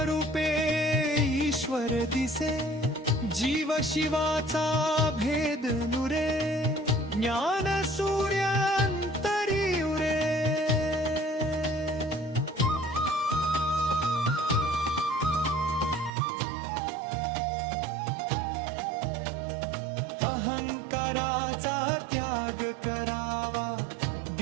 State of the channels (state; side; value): drops out; left; at 16.1 s